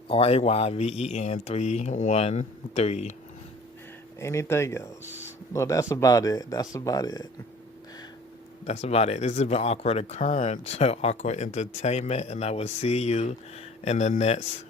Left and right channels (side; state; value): both; normal; correlation 0.48